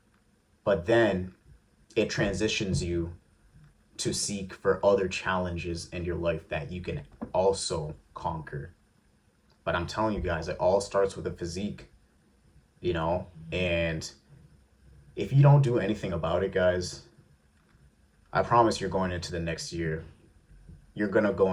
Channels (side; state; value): both; identical; correlation 1.00